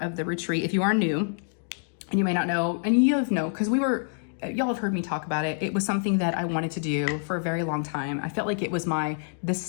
of the retreat, if you are new and you may not know, and you know, because y'all have heard me talk about it. It was something that I wanted to do for a very long time. I felt like it was this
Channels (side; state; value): right; silent; digital silence